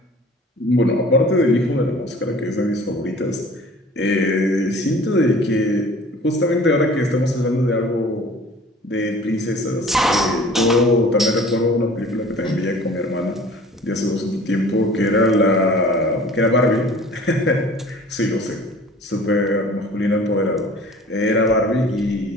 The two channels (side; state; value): both; normal; correlation 0.47